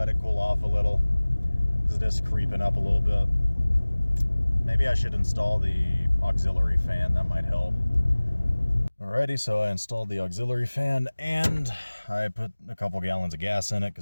it cool off a little, because it is creeping up a little bit. Maybe I should install the auxiliary fan, that might help. Alrighty, so I installed the auxiliary fan, and I put a couple gallons of gas in it,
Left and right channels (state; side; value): inverted; both; correlation -1.00